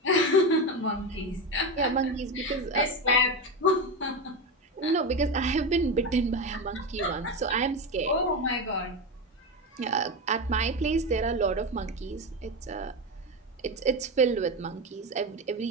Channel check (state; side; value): normal; both; correlation 0.17